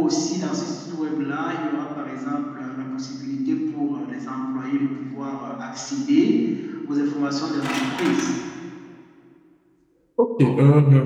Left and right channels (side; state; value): both; identical; correlation 1.00